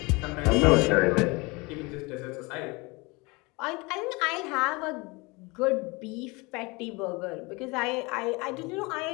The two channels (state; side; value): quieter; right; 25.9 dB